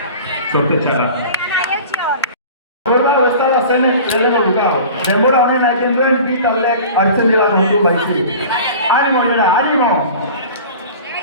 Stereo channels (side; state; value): both; inverted; correlation -0.40